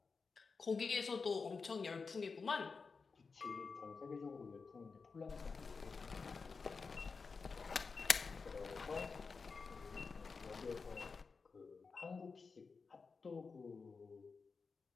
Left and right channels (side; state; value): right; quieter; 4.8 dB